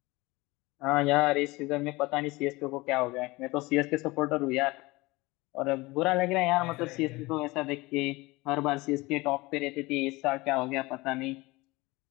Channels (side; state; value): right; quieter; 22.1 dB